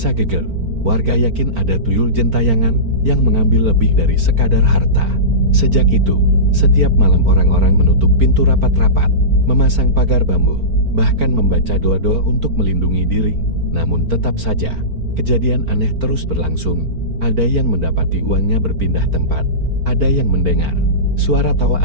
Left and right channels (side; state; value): left; late; 4.4 ms